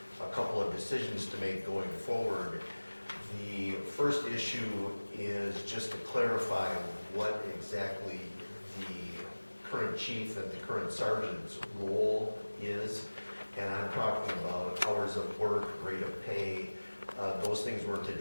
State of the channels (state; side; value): inverted; both; correlation -1.00